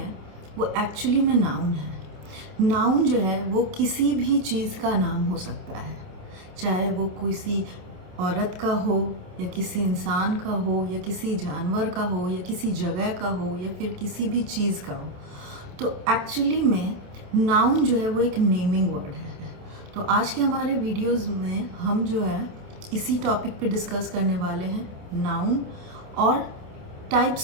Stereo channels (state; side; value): late; left; 27 ms